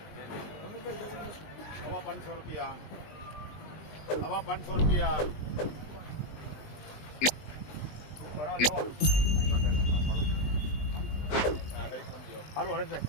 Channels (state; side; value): late; right; 20 ms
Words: हवा 500 रुपया, हवा 500 रुपया। हारो हरे से